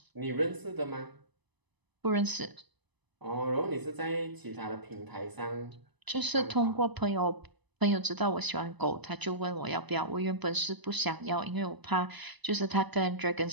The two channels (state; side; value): late; left; 1.0 ms